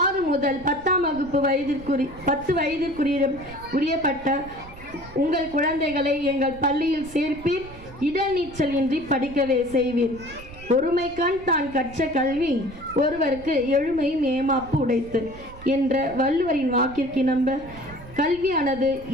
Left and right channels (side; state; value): right; noise; rumble, 18 dB below the sound